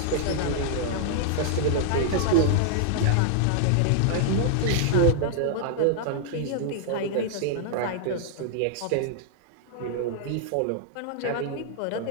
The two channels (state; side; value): different; both; correlation -0.01